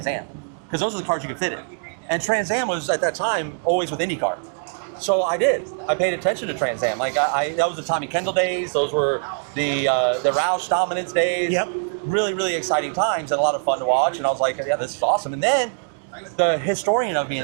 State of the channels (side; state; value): left; silent; digital silence